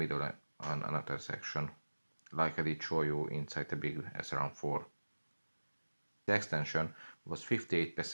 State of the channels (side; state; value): both; inverted; correlation -1.00